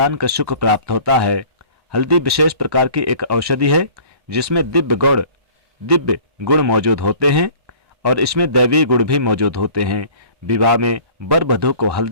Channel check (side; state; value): left; late; 1.1 ms